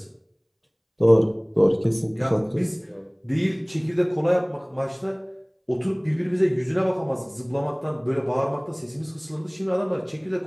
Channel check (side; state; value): both; identical; correlation 1.00